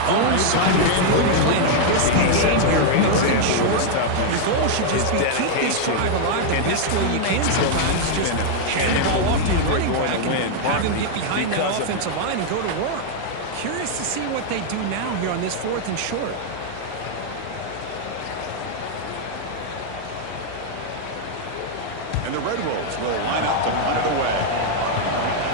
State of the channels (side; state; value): both; different; correlation 0.00